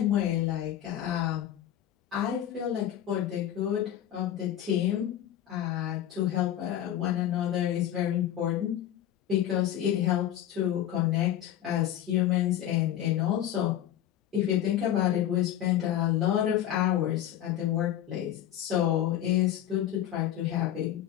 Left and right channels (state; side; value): quieter; right; 11.5 dB